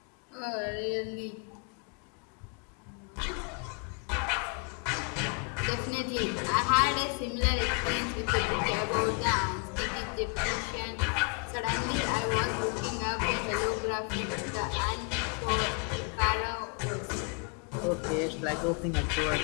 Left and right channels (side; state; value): right; quieter; 38.4 dB